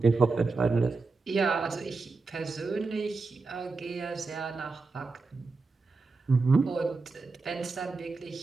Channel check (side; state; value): left; quieter; 4.0 dB